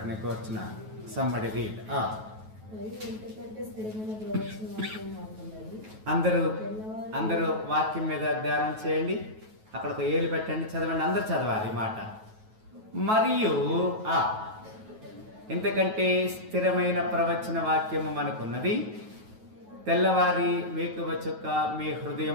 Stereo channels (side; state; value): left; late; 9.3 ms